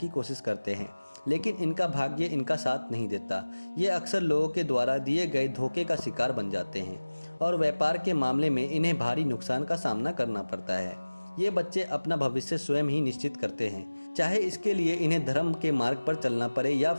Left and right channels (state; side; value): inverted; both; correlation -1.00